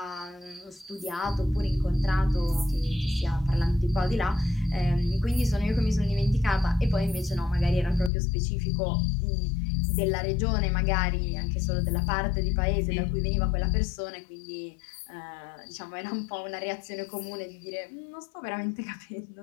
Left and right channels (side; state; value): right; drops out; at 8.1 s